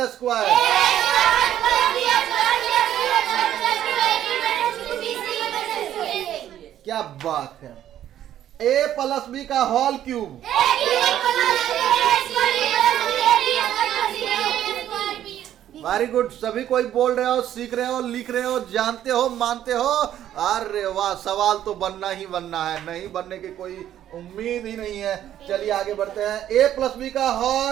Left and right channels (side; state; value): left; quieter; 11.4 dB